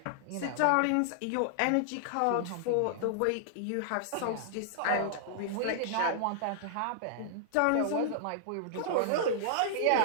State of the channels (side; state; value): both; different; correlation -0.01